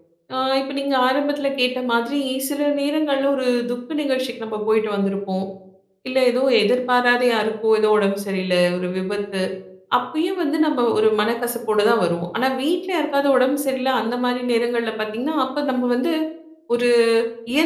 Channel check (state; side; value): identical; both; correlation 1.00